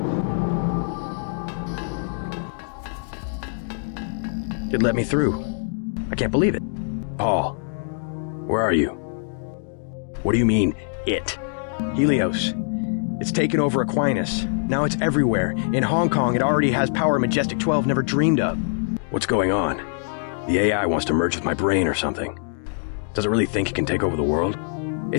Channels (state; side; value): silent; right; digital silence